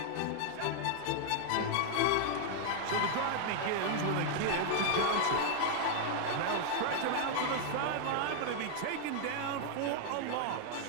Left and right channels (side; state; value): both; different; correlation 0.00